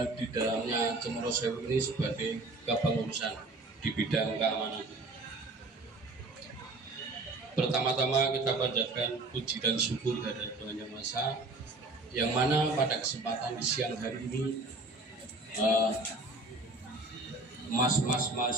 di dalamnya Cemoro Sewu ini sebagai kepengurusan di bidang keamanan. Pertama-tama kita panjatkan puji dan syukur dari Tuhan Yang Maha Esa, yang mana pada kesempatan di siang hari ini mas-mas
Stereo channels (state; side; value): quieter; left; 3.0 dB